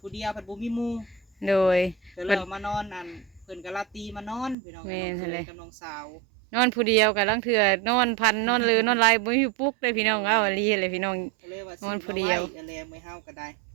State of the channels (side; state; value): left; drops out; at 4.5 s